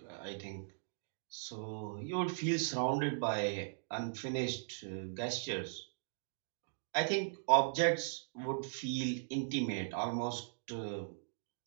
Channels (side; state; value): left; silent; digital silence